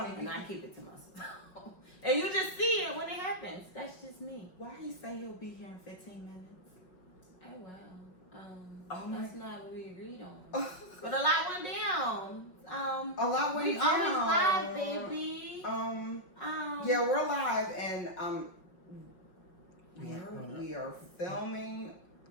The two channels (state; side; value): late; right; 5.5 ms